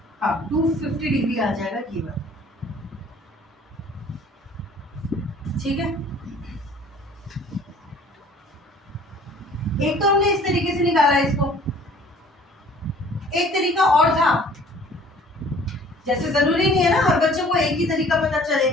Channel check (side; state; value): both; normal; correlation 0.52